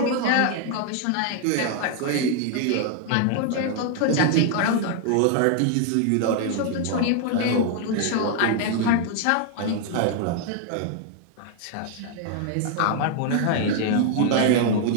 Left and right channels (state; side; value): different; both; correlation 0.00